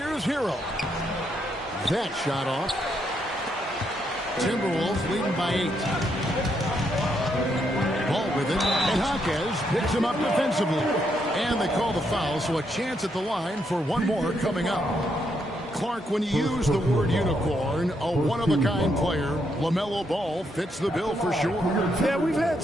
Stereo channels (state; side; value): normal; both; correlation 0.77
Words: Hero. That shot off. Timberwolves leading by 8. Ball with it, and Jaquez picks him up defensively. And they call the foul, so a chance at the line for one more coming up. Clark, when you use the word unicorn, a one-of-a-kind player, LaMelo Ball fits the bill for sure. Yeah, we've had